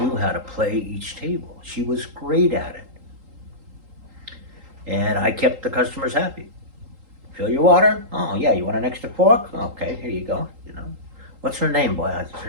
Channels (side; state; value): left; late; 3.8 ms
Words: how to play each table. She was great at it. And I kept the customers happy. Fill your water? Oh, yeah, you want an extra fork? Okay, here you go, What's her name, boy? Her